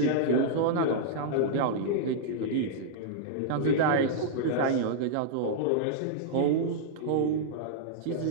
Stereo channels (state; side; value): different; both; correlation -0.02